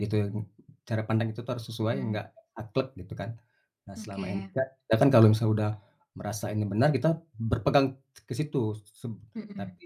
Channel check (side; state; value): both; identical; correlation 1.00